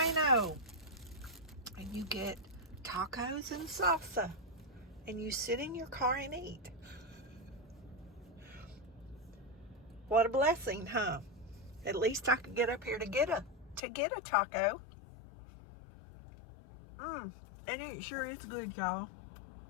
and you get tacos and salsa and you sit in your car and eat. What a blessing, huh? At least I could get up here to get a taco. And it sure is good, y'all.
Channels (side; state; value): right; drops out; at 13.8 s